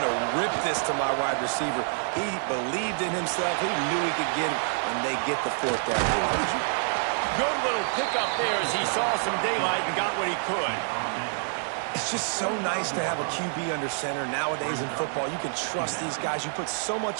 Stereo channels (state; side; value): silent; left; 60 dB below the other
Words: to rip this to my wide receiver. He believed in himself. He knew he could get it, and they get the 4th down. Good little pickup there as he saw some daylight and got what he could. It's just so nice to have a QB under center. Nowadays in football, you can trust these guys. You put so